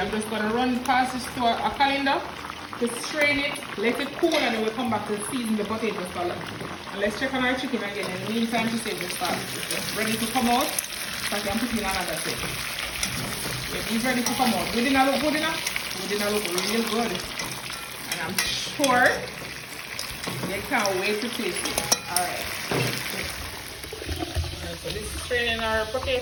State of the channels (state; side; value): identical; both; correlation 1.00